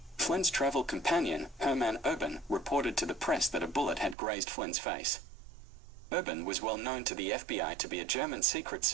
Flynn's travel companion, Herman Urban, reported to the press that a bullet had grazed Flynn's face. Urban was well known to the FBI to be a German Secret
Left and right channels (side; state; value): left; drops out; at 4.2 s